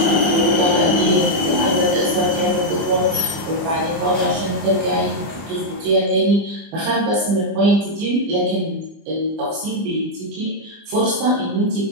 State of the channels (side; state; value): left; late; 25 ms